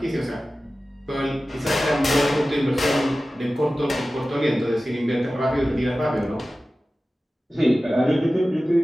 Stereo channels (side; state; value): both; normal; correlation 0.95